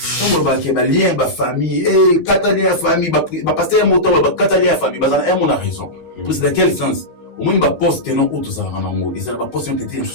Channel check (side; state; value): right; late; 13 ms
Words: comme ba ke ba lien ba famille catalien famille ba pasteur moto ba catalien famille ba za mon a raison pour c'est dans quel sens au moins ba poste non auto ça na ngo et ça ba poste était